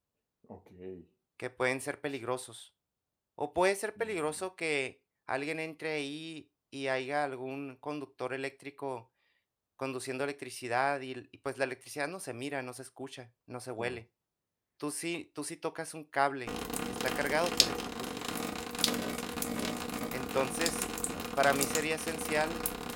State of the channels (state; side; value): identical; both; correlation 1.00